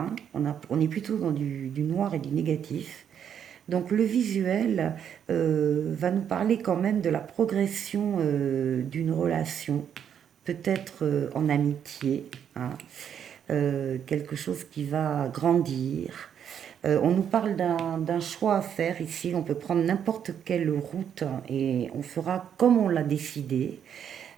On est plutôt dans du noir et du négatif. Donc le visuel va nous parler quand même de la progression d'une relation, peut-être en amitié, hein, quelque chose qui va grandir. On nous parle d'un choix à faire ici. On peut prendre n'importe quelle route et on fera comme on l'a décidé.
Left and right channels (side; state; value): left; quieter; 8.6 dB